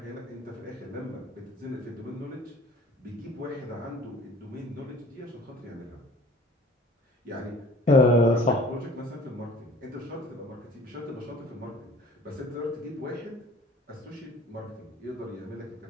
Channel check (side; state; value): both; normal; correlation 0.50